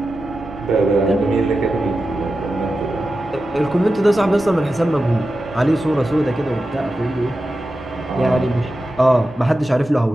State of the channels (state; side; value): normal; both; correlation 0.92